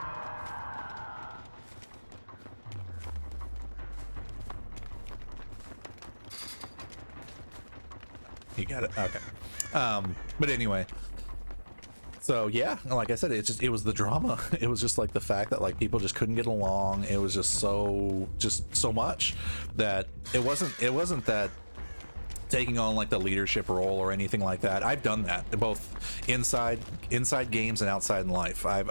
You got it. Okay. But anyway, so yeah, like I said, it was the drama. It was just like the fact that like people just couldn't get along. It was just so much that it wasn't that taking on like the leadership role or anything like that. I've done that both inside games and outside in life.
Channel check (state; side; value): inverted; both; correlation -1.00